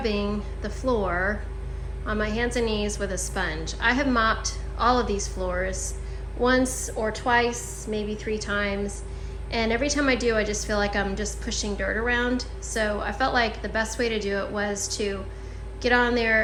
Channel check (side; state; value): both; identical; correlation 1.00